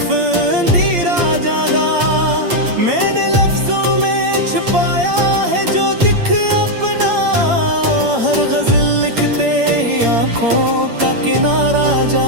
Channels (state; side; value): late; left; 8.7 ms